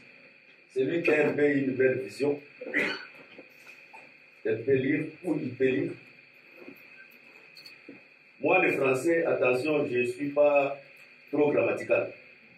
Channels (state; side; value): identical; both; correlation 1.00